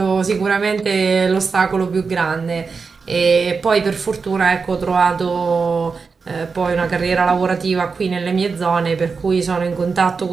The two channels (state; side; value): quieter; left; 5.0 dB